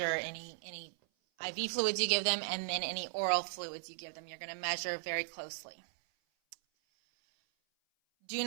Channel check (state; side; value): silent; left; 53 dB below the other